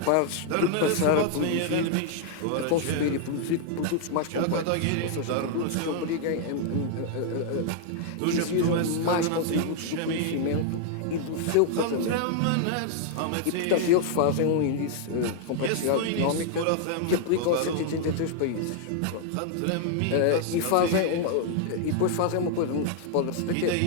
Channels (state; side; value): different; both; correlation -0.01